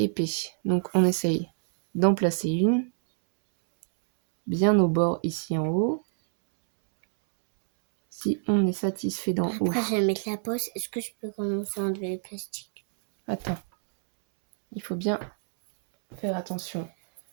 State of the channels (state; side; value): silent; left; 60 dB below the other